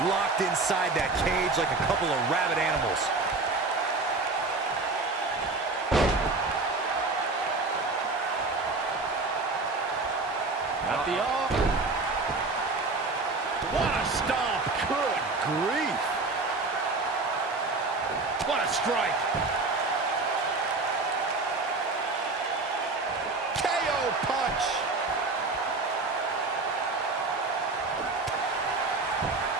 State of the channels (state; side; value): quieter; left; 3.6 dB